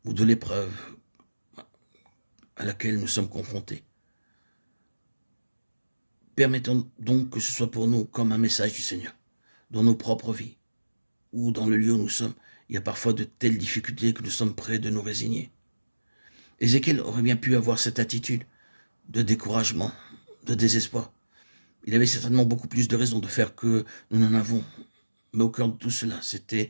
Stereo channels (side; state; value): both; inverted; correlation -1.00